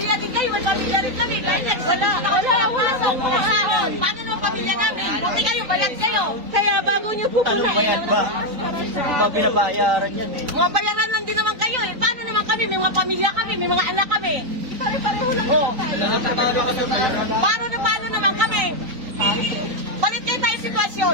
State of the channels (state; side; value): late; left; 3.9 ms